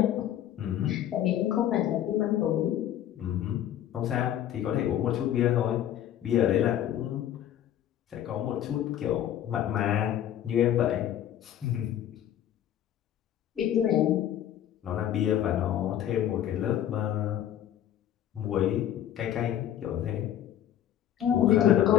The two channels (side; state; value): right; quieter; 11.2 dB